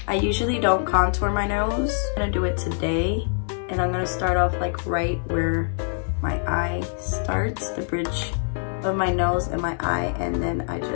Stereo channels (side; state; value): right; silent; digital silence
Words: I usually don't contour my nose. I'm gonna do it today, and I'm gonna start off like right where my eye starts, the bridge of my nose and my eye, and then I